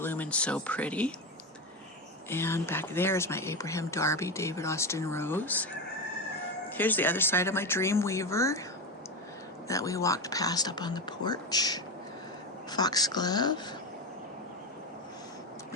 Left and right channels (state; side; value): normal; both; correlation 0.18